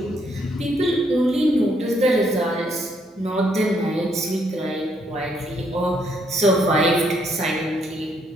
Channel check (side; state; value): both; normal; correlation 0.72